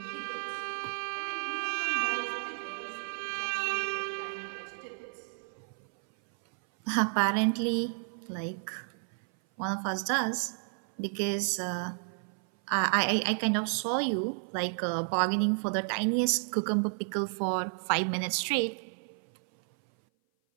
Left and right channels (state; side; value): silent; left; 57 dB below the other